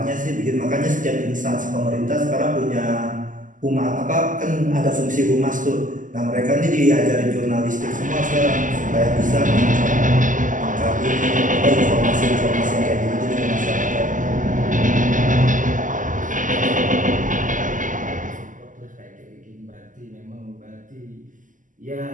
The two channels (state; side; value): late; left; 0.38 ms